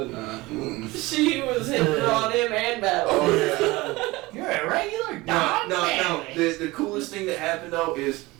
I? She was hitting on him and Battle. Oh yeah. You're a regular No. dog. The coolest thing that happened though is,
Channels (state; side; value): quieter; left; 21.1 dB